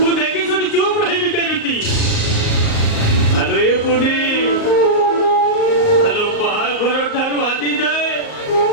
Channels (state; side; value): late; right; 38 ms